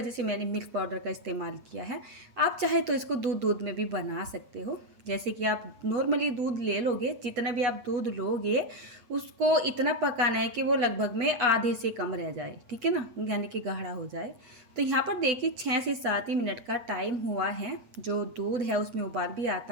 से मैंने मिल्क पाउडर का इस्तेमाल किया है। आप चाहे तो इसको दूध में भी बना सकते हो। जैसे कि आप नॉर्मली दूध ले लोगे, जितना भी आप दूध लोगे उसको इतना पकाना है कि वो लगभग में आधे से कम रह जाए। ठीक है ना, यानी कि गाढ़ा हो जाए। तो यहाँ पर देखिए 6 से 7 ही मिनट का टाइम हुआ है। जो दूध है उसमें उबाल भी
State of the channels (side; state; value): left; late; 8.2 ms